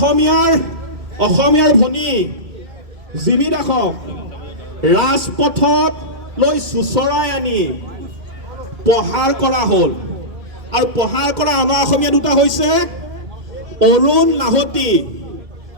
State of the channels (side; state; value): left; late; 2.1 ms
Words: অসমীয়াৰ ভনী জিমি দাসক ৰাজপথত লৈ চুচৰাই আনি প্ৰহাৰ কৰা হ'ল। আৰু প্ৰহাৰ কৰা অনা অসমীয়া দুটা হৈছে অৰুণ লাহতি